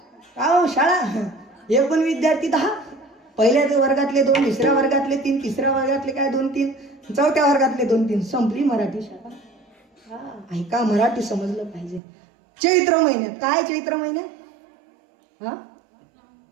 का हो शाळा, एकूण विद्यार्थी 10, पहिल्या वर्गातले 2, दुसऱ्या वर्गातले 3, तिसऱ्या वर्गातले काय 2-3, चौथ्या वर्गातले 2-3, संपली मराठी शाळा. ऐका, मराठी समजलं पाहिजे. चैत्र महिन्यात काय, चैत्र महिन्यात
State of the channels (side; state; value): left; drops out; at 12.0 s